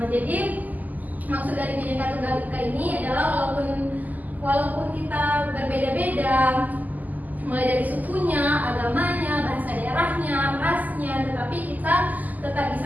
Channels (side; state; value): left; late; 0.081 ms